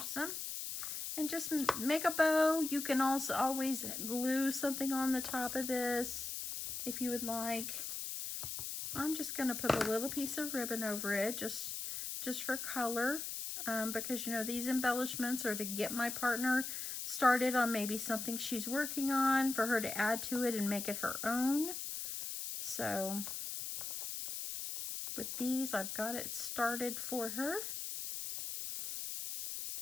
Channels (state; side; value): noise; left; hiss, 5 dB below the sound